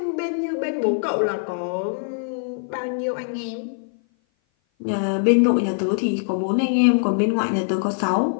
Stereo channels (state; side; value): silent; right; 57 dB below the other